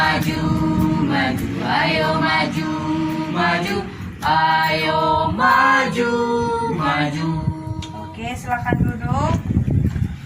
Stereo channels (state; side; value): identical; both; correlation 1.00